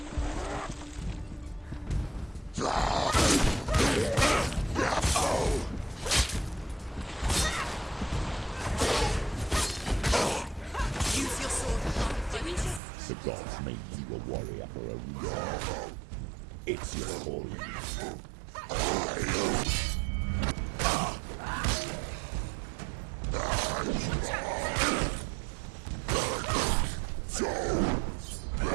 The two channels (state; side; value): drops out; left; at 12.8 s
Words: Use your sword. The gods made you a warrior for a reason. It's your calling.